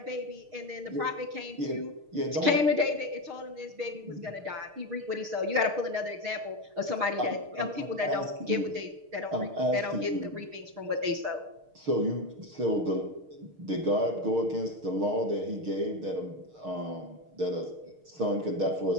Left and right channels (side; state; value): left; late; 6.5 ms